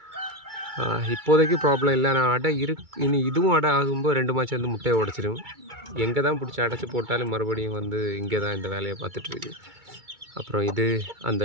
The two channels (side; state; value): left; late; 2.3 ms